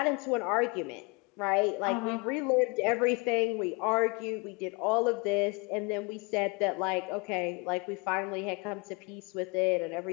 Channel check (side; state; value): right; quieter; 29.8 dB